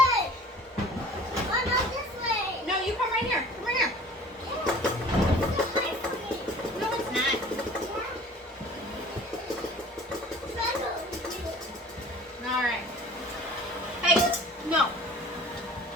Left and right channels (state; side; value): normal; both; correlation 0.47